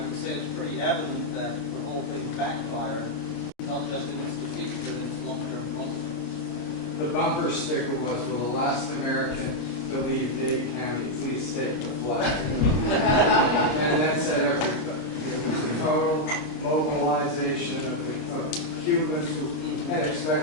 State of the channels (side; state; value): right; late; 26 ms